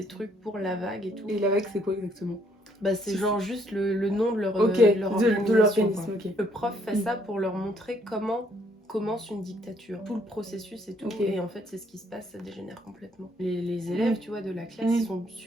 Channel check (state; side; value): normal; both; correlation 0.68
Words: trucs pour La Vague et tout. Et La Vague, c'est quoi exactement? Bah, c'est genre juste le nom de leur, de organisation. l'organisme. Ok. Le prof fait ça pour leur montrer comment commence une dictature, tout le processus et tout, et en fait c'est ce qui se passe, ça dégénère complètement. Les élèves, tu vois, de la classe, ils sont